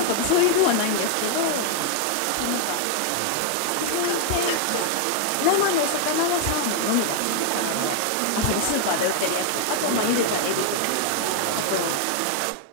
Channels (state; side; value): different; both; correlation 0.00